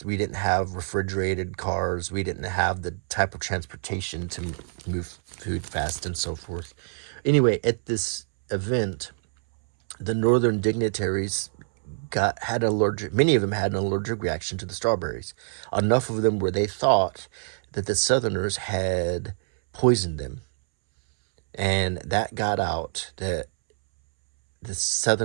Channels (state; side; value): silent; left; 61 dB below the other